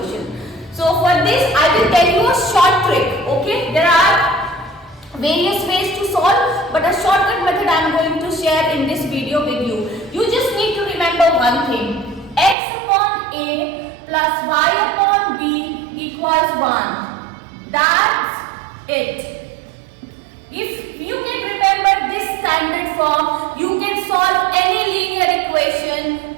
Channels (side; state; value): left; drops out; at 12.6 s